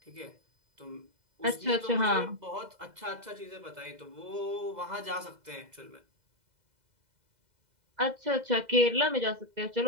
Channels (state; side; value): late; left; 2.0 ms